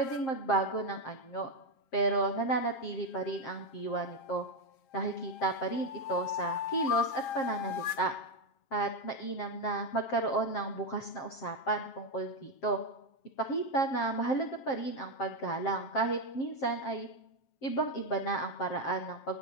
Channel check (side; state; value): right; late; 7.5 ms